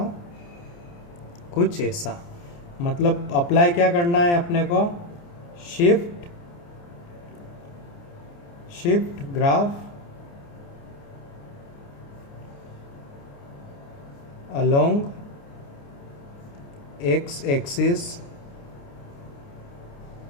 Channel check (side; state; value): right; late; 29 ms